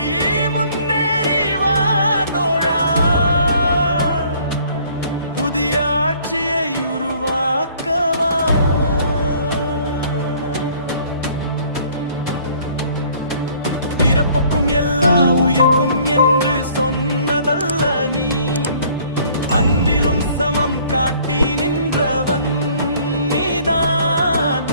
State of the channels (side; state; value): both; inverted; correlation -0.57